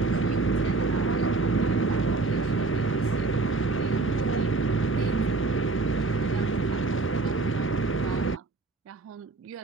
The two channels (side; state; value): left; quieter; 3.6 dB